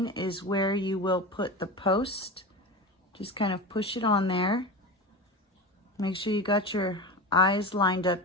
is where you will put the post. Just kind of push it on there. Make sure you got your eyes lined up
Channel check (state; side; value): normal; both; correlation 0.26